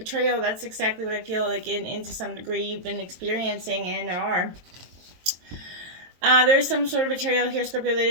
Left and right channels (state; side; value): late; left; 23 ms